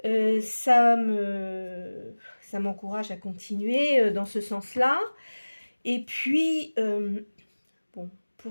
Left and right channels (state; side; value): inverted; both; correlation -1.00